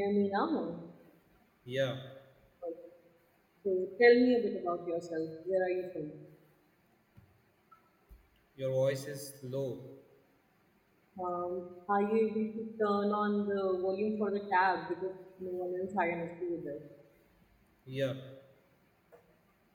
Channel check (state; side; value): identical; both; correlation 1.00